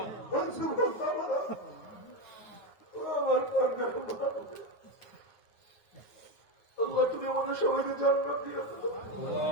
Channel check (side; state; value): right; late; 9.5 ms